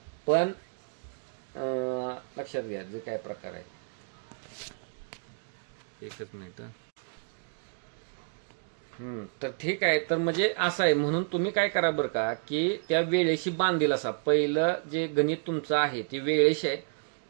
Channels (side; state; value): left; silent; digital silence